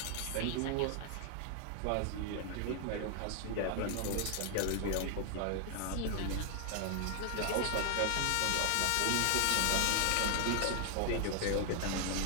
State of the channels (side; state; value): both; different; correlation 0.00